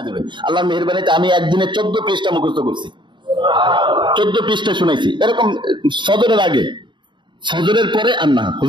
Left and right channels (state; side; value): late; left; 0.23 ms